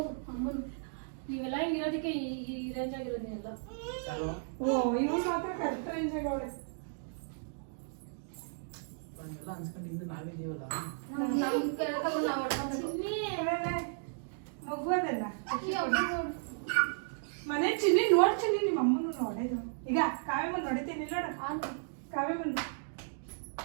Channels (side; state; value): left; silent; digital silence